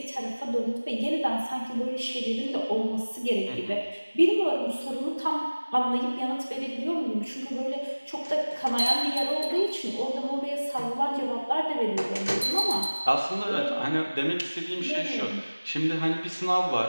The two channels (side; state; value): both; inverted; correlation -1.00